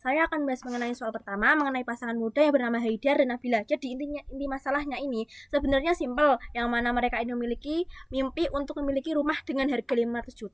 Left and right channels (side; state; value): both; identical; correlation 1.00